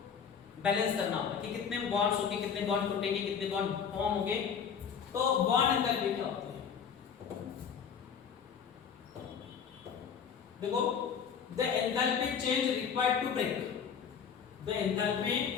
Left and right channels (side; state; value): right; quieter; 7.1 dB